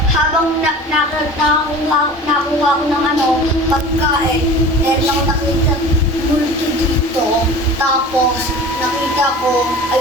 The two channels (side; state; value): both; normal; correlation 0.39